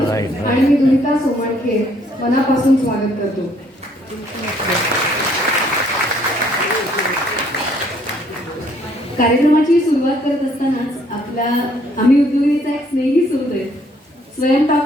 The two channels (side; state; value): both; normal; correlation 0.65